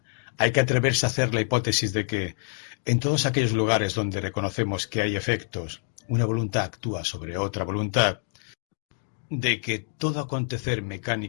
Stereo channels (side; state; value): right; silent; 61 dB below the other